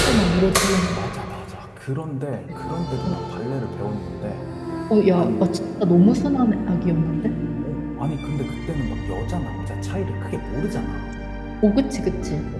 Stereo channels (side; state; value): both; identical; correlation 1.00